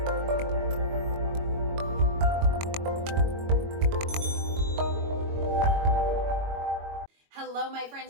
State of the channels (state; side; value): late; left; 22 ms